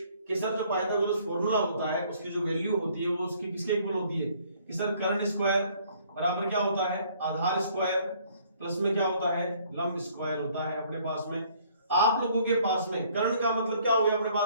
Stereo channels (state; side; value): inverted; both; correlation -0.61